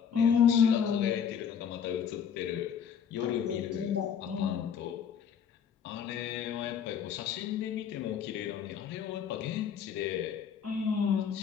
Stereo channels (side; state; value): right; quieter; 7.7 dB